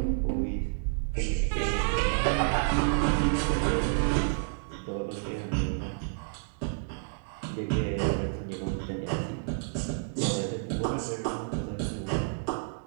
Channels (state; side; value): silent; left; digital silence